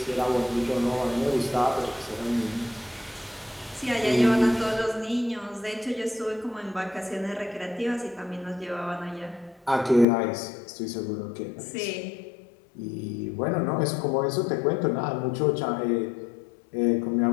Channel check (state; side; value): drops out; right; at 10.1 s